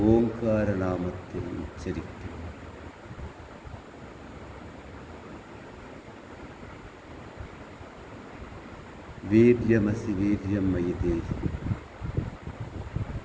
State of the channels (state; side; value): identical; both; correlation 1.00